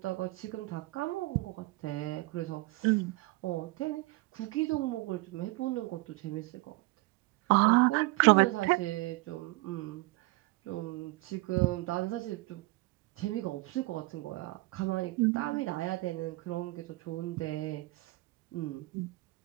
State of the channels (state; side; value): quieter; left; 21.7 dB